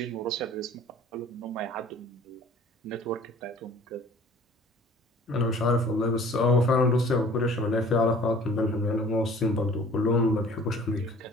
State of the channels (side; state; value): both; normal; correlation 0.50